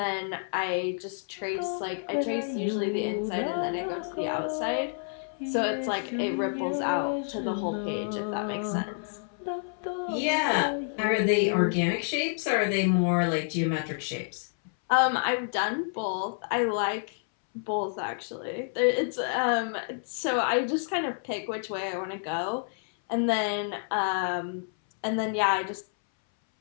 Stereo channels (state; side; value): silent; right; 59 dB below the other